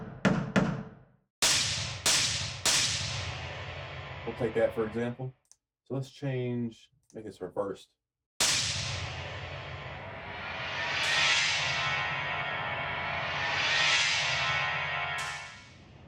We'll take that for example. So let's make this reversed.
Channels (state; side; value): identical; both; correlation 1.00